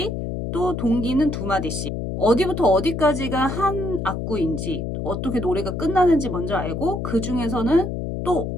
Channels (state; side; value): noise; left; hum, 4 dB below the sound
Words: 또 동기는 2마디씩 어디부터 어디까지가 한 악구인지 어떻게 노래가 끝나는지 먼저 알고 그 중에서는 또